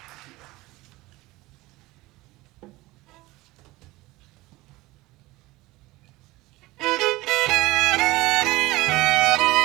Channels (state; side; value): quieter; left; 19.8 dB